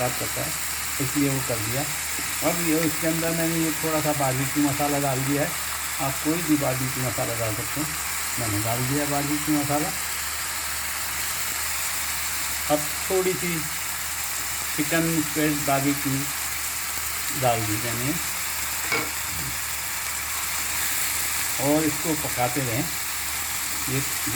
करता है, इसलिए वो कर दिया। अब ये इसके अंदर मैंने ये थोड़ा सा बारबेक्यू मसाला डाल दिया है, आप कोई भी बारबेक्यू मसाला डाल सकते हैं, मैंने डाल दिया बारबेक्यू मसाला। अब थोड़ी सी चिकन स्प्रेड बारबेक्यू डाल दी मैंने और इसको पकाते रहें। ये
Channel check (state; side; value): identical; both; correlation 1.00